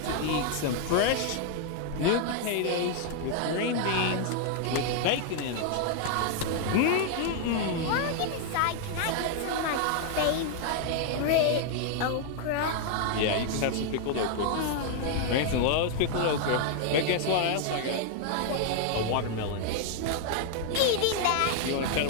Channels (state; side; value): different; both; correlation 0.00